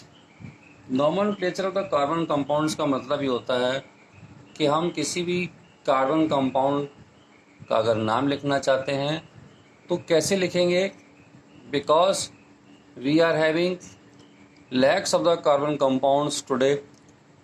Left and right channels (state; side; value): identical; both; correlation 1.00